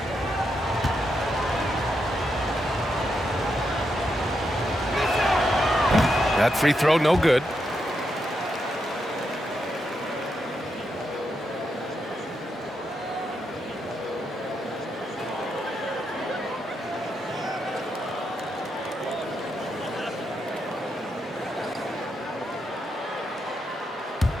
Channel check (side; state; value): both; normal; correlation 0.83